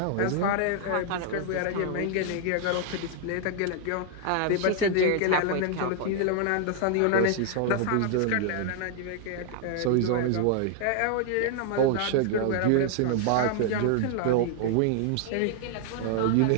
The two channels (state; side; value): different; both; correlation 0.00